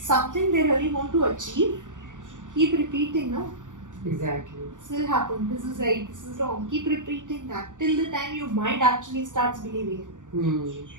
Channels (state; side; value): late; left; 0.87 ms